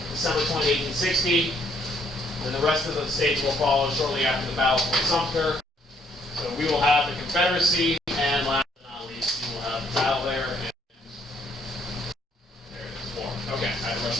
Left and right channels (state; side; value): normal; both; correlation 0.67